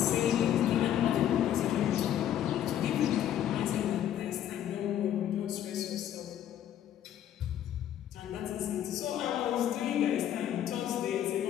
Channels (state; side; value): quieter; right; 10.9 dB